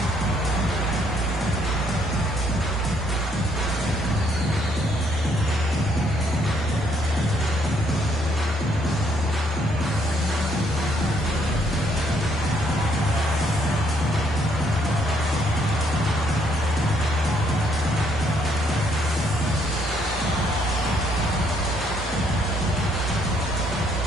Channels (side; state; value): both; normal; correlation 0.69